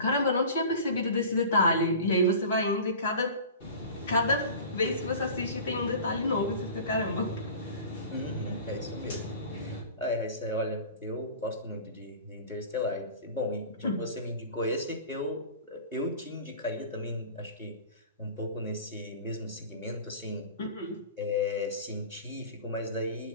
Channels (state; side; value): inverted; both; correlation -0.39